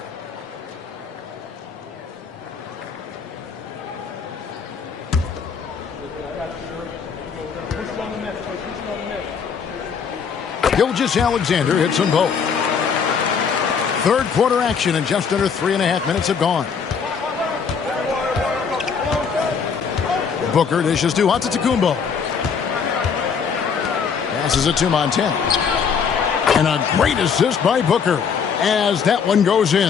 Gilgeous-Alexander hits them both. Third quarter action and just under 3.5 minutes have gone. Booker dishes to Antetokounmpo. Passes it to Montana. And a great assist by Booker as that one goes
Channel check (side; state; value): right; quieter; 6.4 dB